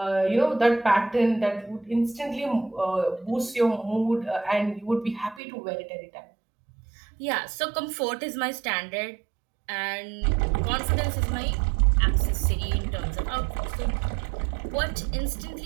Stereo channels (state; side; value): drops out; left; at 5.4 s